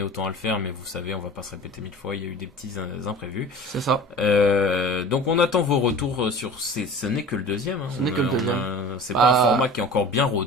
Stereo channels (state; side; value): normal; both; correlation 0.39